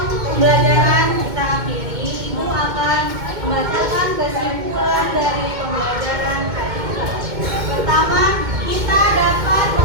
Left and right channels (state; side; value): late; left; 2.1 ms